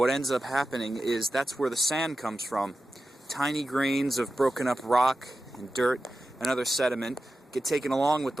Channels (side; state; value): both; normal; correlation 0.93